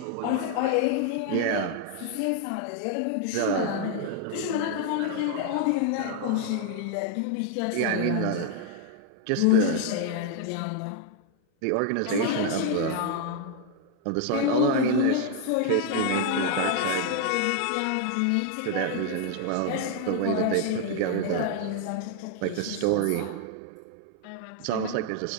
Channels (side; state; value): both; different; correlation 0.00